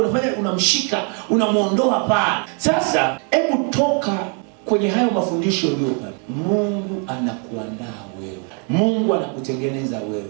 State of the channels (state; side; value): quieter; left; 39.0 dB